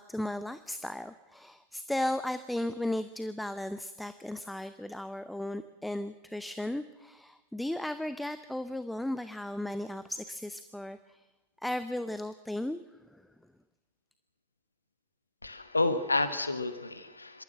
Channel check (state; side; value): normal; both; correlation 0.32